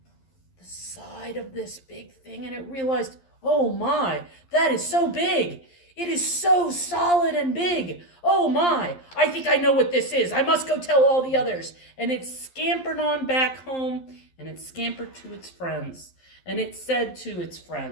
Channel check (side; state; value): right; late; 11 ms